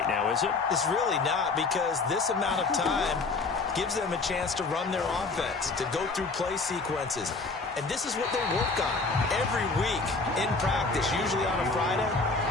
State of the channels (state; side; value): quieter; right; 3.9 dB